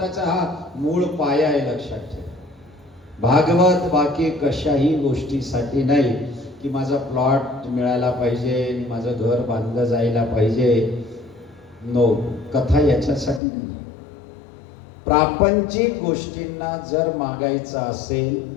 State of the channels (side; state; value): right; drops out; at 13.4 s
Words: हा मूळ पाया आहे, लक्षात ठेवा. भागवत बाकी कशाही गोष्टीसाठी नाही की माझा प्लॉट मिळायला पाहिजे, माझं घर बांधलं जायला पाहिजे. नो, कथा याच्यासाठी नाही. प्रापंचिक गोष्टींना जर मागायचं